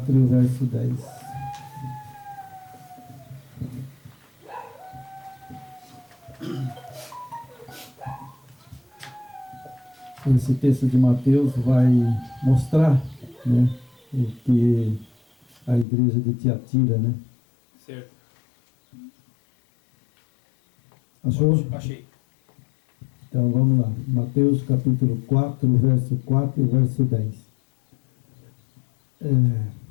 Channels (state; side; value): drops out; right; at 15.9 s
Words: e o verso 10. Esse texto de Mateus vai mostrar, né, o que a igreja de Tiatira, né? Certo. Achou? Achei. Então vamos lá. Mateus capítulo 4, verso 4 e o verso 10.